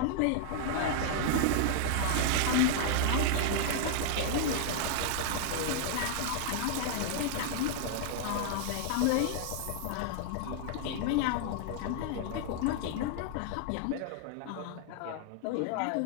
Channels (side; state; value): both; different; correlation 0.00